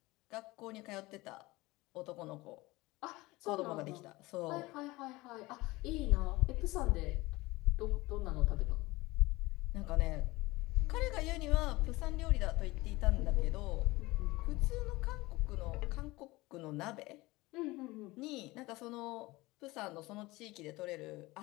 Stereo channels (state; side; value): quieter; right; 20.9 dB